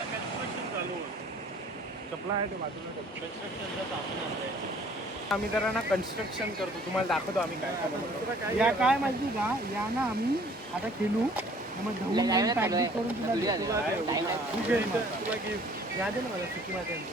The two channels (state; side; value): normal; both; correlation 0.55